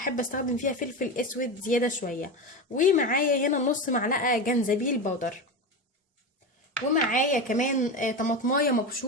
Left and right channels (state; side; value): normal; both; correlation 0.21